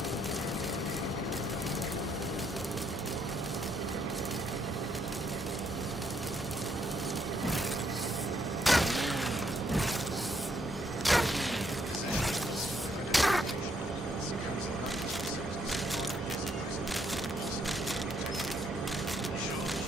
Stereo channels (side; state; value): both; normal; correlation 0.73